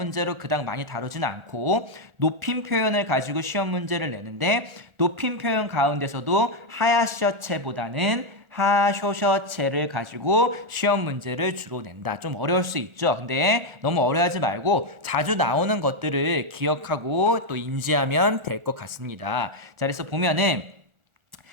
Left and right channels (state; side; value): late; left; 1.4 ms